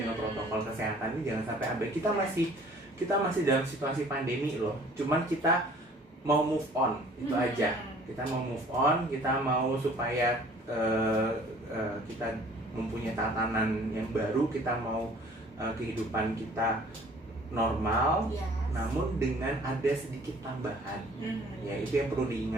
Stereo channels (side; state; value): both; normal; correlation 0.53